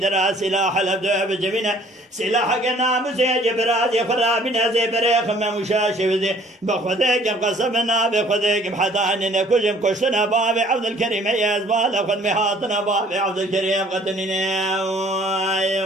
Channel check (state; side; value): normal; both; correlation 0.56